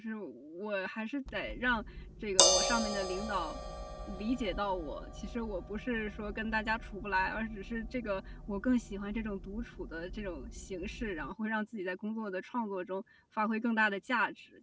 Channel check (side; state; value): both; identical; correlation 1.00